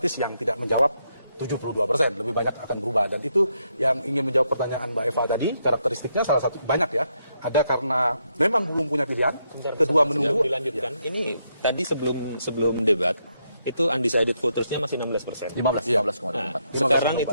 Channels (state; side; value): inverted; both; correlation -0.78